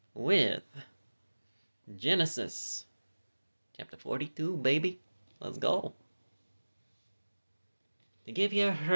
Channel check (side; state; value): both; inverted; correlation -1.00